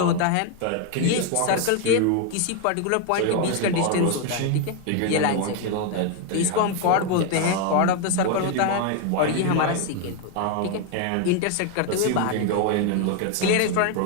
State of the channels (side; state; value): both; different; correlation 0.01